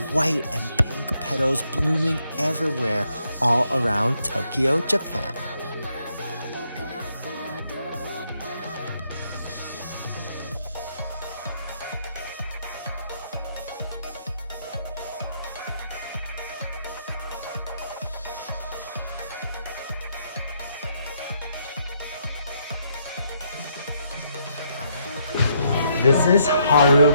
white and pink petals blooming everywhere all around Tokyo, Japan. This is Haru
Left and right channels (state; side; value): inverted; both; correlation -0.74